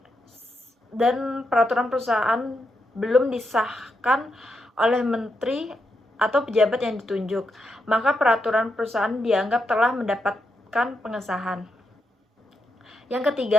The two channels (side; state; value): both; normal; correlation 0.83